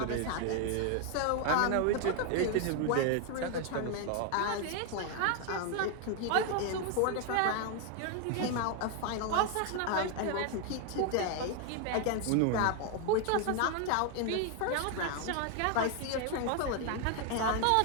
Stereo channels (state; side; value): different; both; correlation 0.01